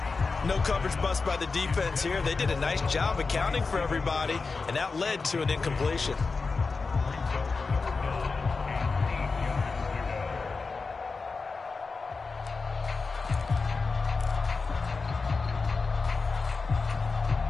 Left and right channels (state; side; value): quieter; right; 4.3 dB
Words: No coverage bust by the defense here. They did a nice job accounting for everybody, and that led to an incompletion.